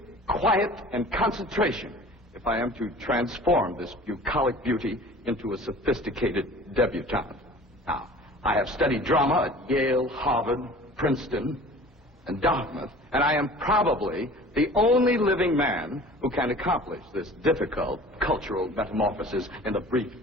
quiet and concentration if I am to transform this bucolic beauty into a sophisticated debutante. Now, I have studied drama at Yale, Harvard, Princeton, and Dartmouth, and I am probably the only living man who can accomplish this difficult cultural metamorphosis in the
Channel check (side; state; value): both; normal; correlation 0.44